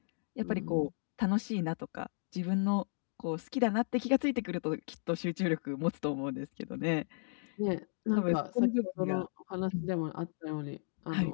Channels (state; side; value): silent; right; digital silence